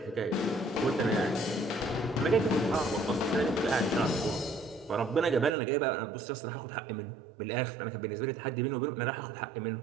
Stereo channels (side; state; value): left; drops out; at 5.6 s